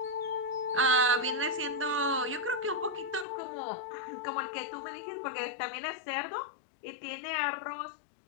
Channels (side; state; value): right; drops out; at 3.2 s